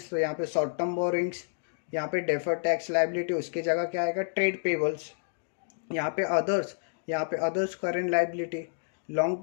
तो यहाँ पे शॉर्ट टर्म बोरिंग्स, यहाँ पे डेफर टैक्स लाइबिलिटी उसकी जगह क्या आएगा, ट्रेड पेबल्स। यहाँ पे अदर्स, यहाँ पे others current liability, long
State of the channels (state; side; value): silent; right; digital silence